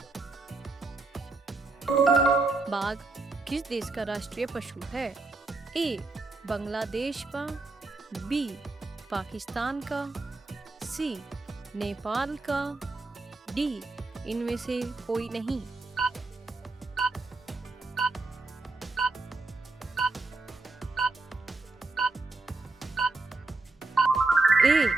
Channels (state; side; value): quieter; left; 3.4 dB